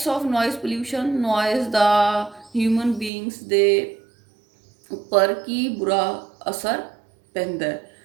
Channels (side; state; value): left; drops out; at 3.1 s